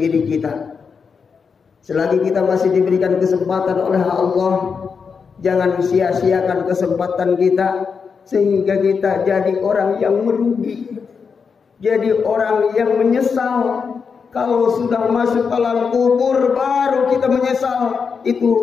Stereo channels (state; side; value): quieter; right; 5.7 dB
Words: kita. Selagi kita masih diberikan kesempatan oleh Allah, jangan sia-siakan kesempatan kita sehingga kita jadi orang yang merugi, jadi orang yang menyesal. Kalau sudah masuk alam kubur baru kita menyesal,